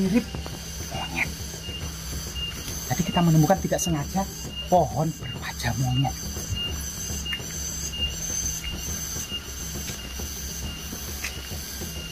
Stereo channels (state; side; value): identical; both; correlation 1.00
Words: monyet. Jadi kita menemukan tidak sengaja pohon berwajah monyet.